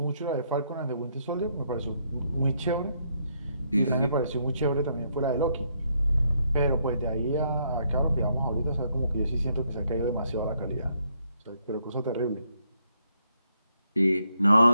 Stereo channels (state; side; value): inverted; both; correlation -0.74